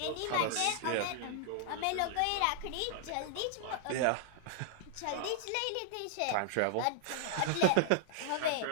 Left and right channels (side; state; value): both; different; correlation -0.01